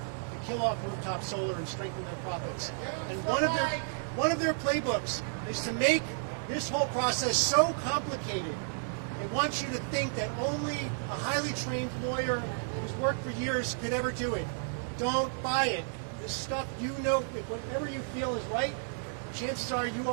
kill off rooftop solar and strengthen their profits. And one of their playbooks is to make this whole process so complicated. It wants you to think that only a highly trained lawyer who's worked for years could ever do it. Don't buy it. This stuff, you know, whatever you feel is right, chances are you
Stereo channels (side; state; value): left; silent; digital silence